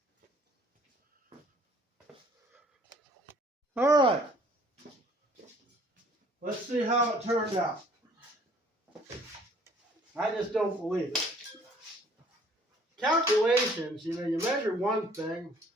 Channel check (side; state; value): both; normal; correlation 0.57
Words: All right. Let's see how it turned out. I just don't believe it. Calculations, you know, you measure one thing,